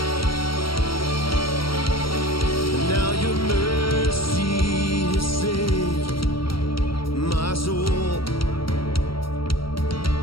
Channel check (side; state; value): right; late; 0.74 ms